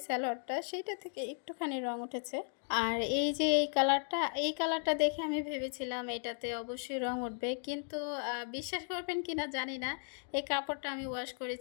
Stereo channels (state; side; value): silent; right; 54 dB below the other